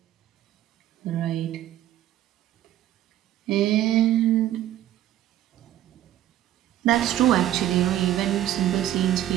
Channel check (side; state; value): left; quieter; 12.6 dB